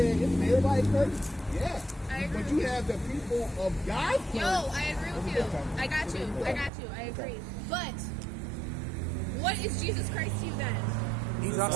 isn't everybody cursed? Yeah. I agree But with you you. have the people of God. Yo, I agree with you. I got you. I agree. But what is Jesus Christ to you then? He's our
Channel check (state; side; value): drops out; left; at 6.7 s